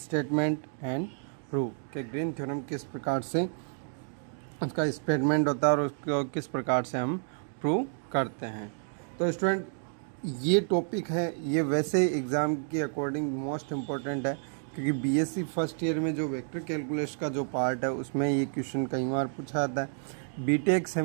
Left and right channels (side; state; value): left; silent; digital silence